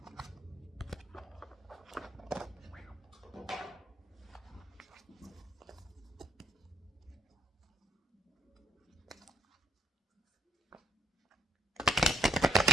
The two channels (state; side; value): normal; both; correlation 0.67